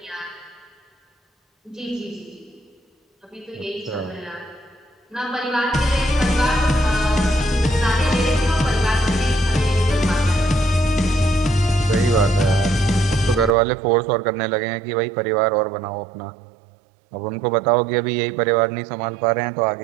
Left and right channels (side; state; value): left; drops out; at 13.6 s